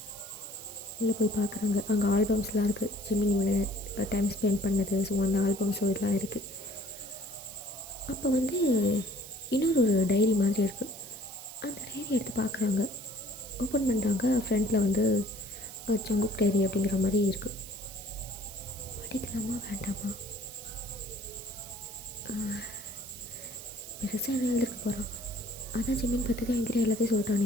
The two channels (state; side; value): noise; right; hiss, 14 dB below the sound